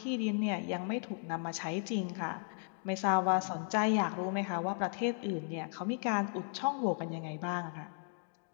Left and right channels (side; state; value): right; silent; 54 dB below the other